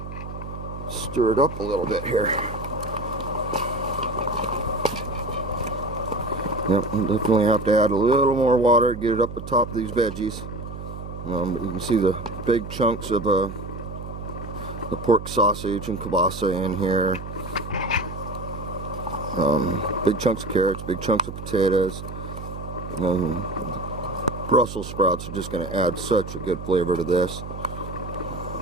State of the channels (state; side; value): noise; right; hum, 9 dB below the sound